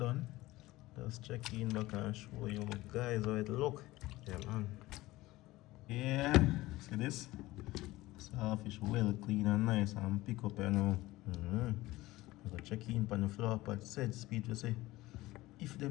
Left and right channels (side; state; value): right; quieter; 18.4 dB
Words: just check in back and show you guys how it look. Yeah man. Yeah, see this? Saltfish well clean and nice and pick up you know. I go check in on the floor pot set speed to say if